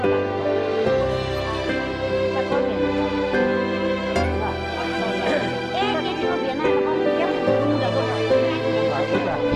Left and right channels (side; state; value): both; identical; correlation 1.00